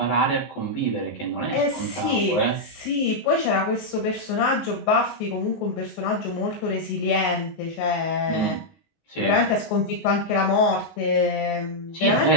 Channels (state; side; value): late; right; 19 ms